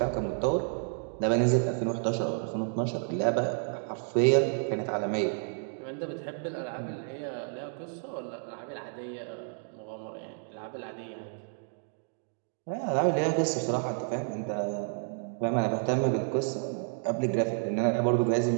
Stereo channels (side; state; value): left; silent; 57 dB below the other